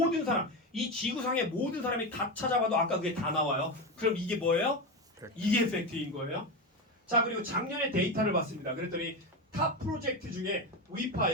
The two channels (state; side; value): normal; both; correlation 0.17